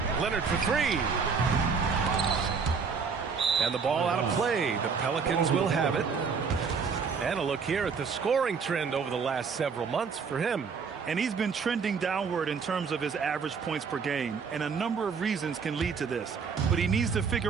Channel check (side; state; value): left; quieter; 5.6 dB